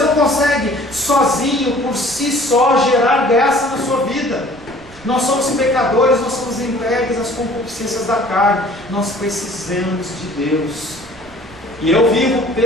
consegue sozinho, por si só, gerar graça na sua vida. Nós somos pecadores, nós somos entregues às concupiscências da carne. Nós precisamos de Deus. E eu vivo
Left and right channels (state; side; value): noise; right; rumble, 22 dB below the sound